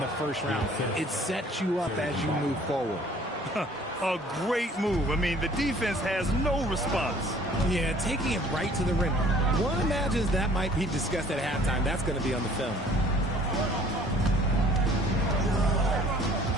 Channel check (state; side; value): normal; both; correlation 0.54